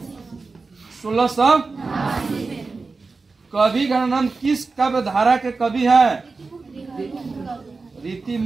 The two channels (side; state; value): left; quieter; 4.1 dB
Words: 1600। कवि घनानंद किस काव्य धारा के कवि हैं? रीति